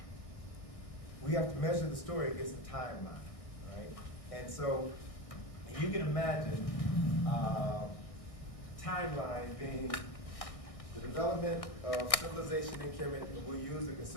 measure the story against a timeline, right? And so you can imagine timeline being the development of civilization in Kemet, and we'll use the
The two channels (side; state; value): right; late; 1.6 ms